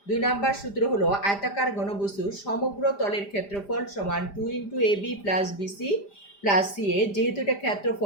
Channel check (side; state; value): right; late; 5.0 ms